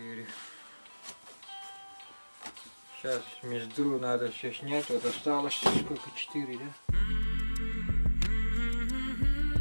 Сейчас мездру надо все снять. Вот осталось сколько, 4, да?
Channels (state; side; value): inverted; both; correlation -1.00